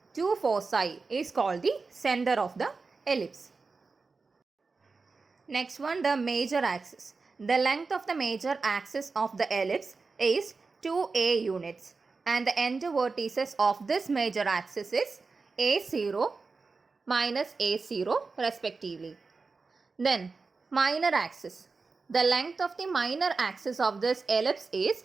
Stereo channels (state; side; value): quieter; left; 4.3 dB